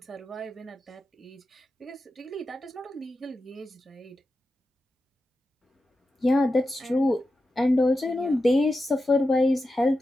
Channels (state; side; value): normal; both; correlation 0.90